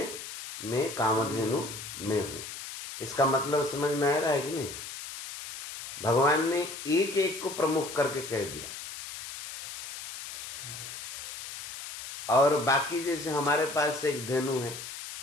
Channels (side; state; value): left; noise; hiss, 10 dB below the sound